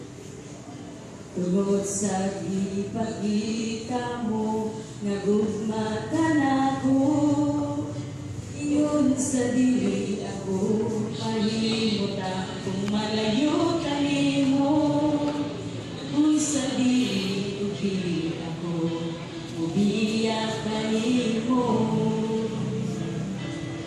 tungod sa gipakita mo nga gugma ka nako. Iyon sa dili ako mahimutang kung malayo ka nimo. Kung sa dili ubi ako ubiyak ka nimo.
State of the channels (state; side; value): identical; both; correlation 1.00